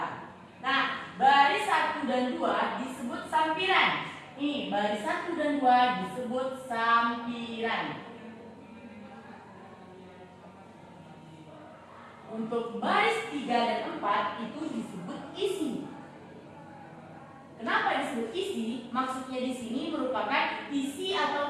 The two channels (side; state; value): both; identical; correlation 1.00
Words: Nah, baris 1 dan 2 disebut sampiran. Ini baris 1 dan 2 disebut sampiran. Untuk baris 3 dan 4 itu disebut isi. Kenapa disebut isi? Maksudnya di sini merupakan isi